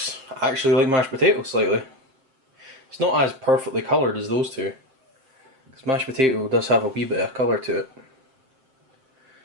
actually like mashed potato slightly. It's not as perfectly coloured as those two, because mashed potato does have a wee bit of colour to it.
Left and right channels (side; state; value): left; late; 7.6 ms